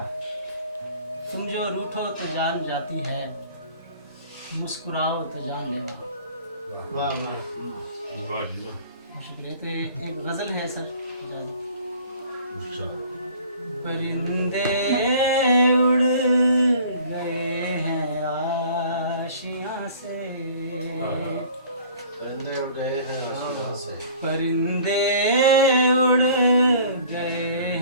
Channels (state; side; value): inverted; both; correlation -0.50